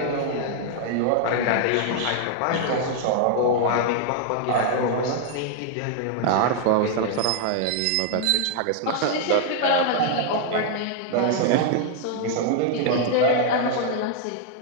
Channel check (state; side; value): different; both; correlation 0.00